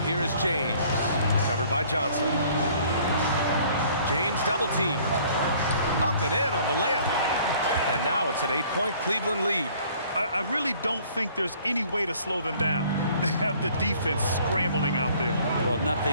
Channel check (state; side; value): inverted; both; correlation -0.56